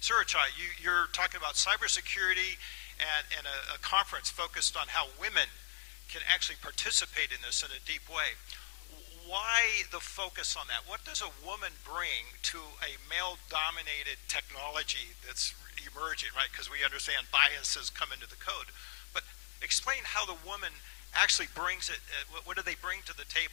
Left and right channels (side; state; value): right; silent; digital silence